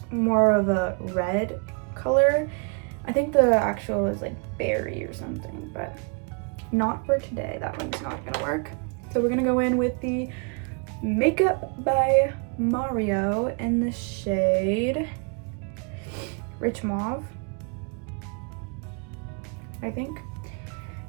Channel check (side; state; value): left; quieter; 36.5 dB